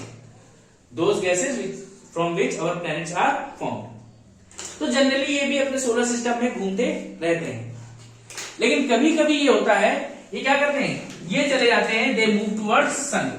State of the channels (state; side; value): identical; both; correlation 1.00